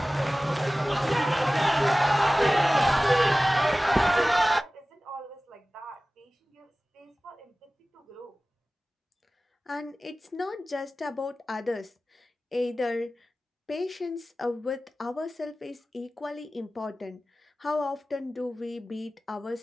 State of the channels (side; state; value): both; normal; correlation 0.97